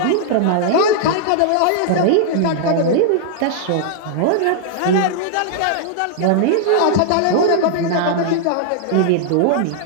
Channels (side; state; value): both; different; correlation -0.01